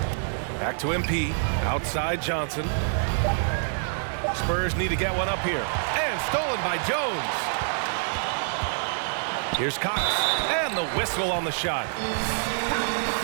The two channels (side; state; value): left; silent; 61 dB below the other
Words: Back to MP. Outside Johnson. Spurs need to get one up here. And stolen by Jones. Here's Cox. And the whistle on the shot.